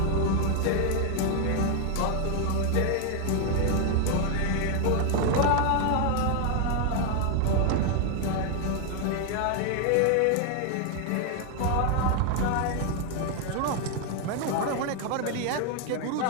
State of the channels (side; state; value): both; different; correlation 0.01